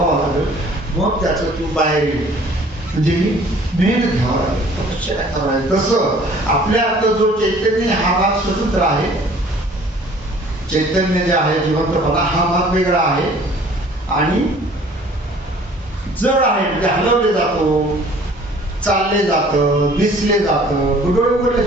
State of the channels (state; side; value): normal; both; correlation 0.52